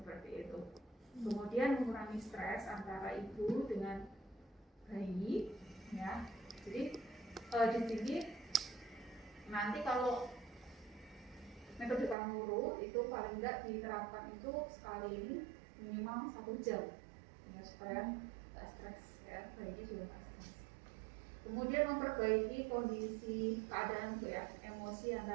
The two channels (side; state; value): left; drops out; at 12.2 s